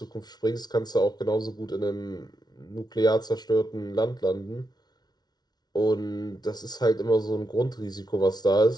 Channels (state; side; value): late; right; 0.19 ms